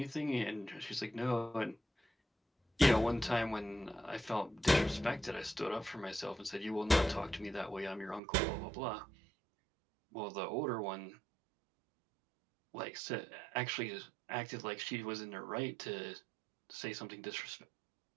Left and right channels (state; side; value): drops out; left; at 8.2 s